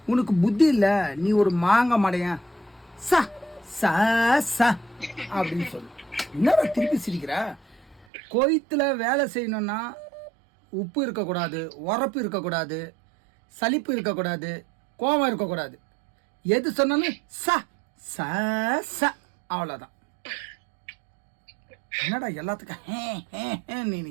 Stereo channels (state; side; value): drops out; left; at 8.1 s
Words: உனக்கு புத்தி இல்லை, நீ ஒரு மாங்க மடையன், சா சா சா அப்படின்னு சொல்லு. என்னடா திருப்பி சிரிக்கிற? கோயத்துல வேலை செய்யணும்னா உப்பு இருக்கக்கூடாது, உரப்பு இருக்கக்கூடாது, சலிப்பு இருக்கக்கூடாது, கோபம் இருக்கக்கூடாது. எது சொன்னாலும் ச ச ச அவ்வளோதான். என்னடா எல்லாத்துக்கும் நீ